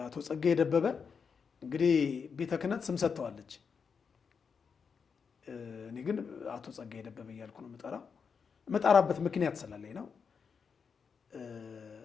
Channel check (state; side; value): quieter; right; 6.0 dB